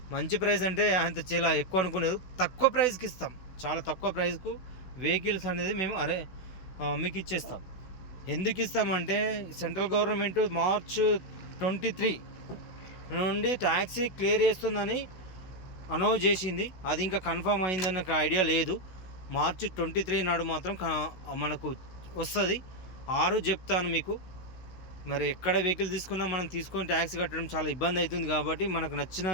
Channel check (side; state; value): right; late; 16 ms